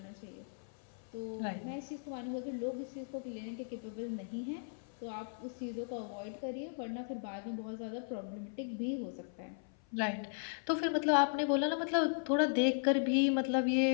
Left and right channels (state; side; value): silent; right; 53 dB below the other